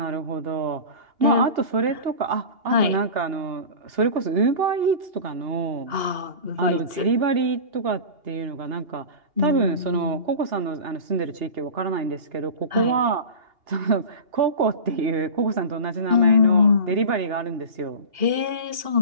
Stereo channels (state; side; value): late; left; 2.8 ms